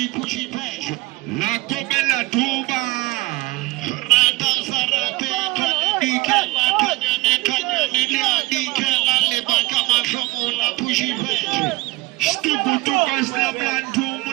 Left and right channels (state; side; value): quieter; left; 20.2 dB